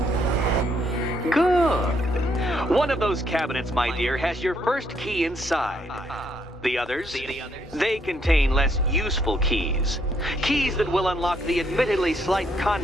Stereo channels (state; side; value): normal; both; correlation 0.72